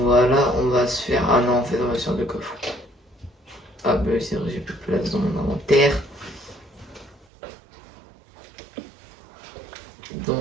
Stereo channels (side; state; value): left; drops out; at 7.2 s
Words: on va se faire... Ah non, en fait, on va se faire deux coffres. Ah bah c'est vrai, j'ai plus de place dans mon inventaire.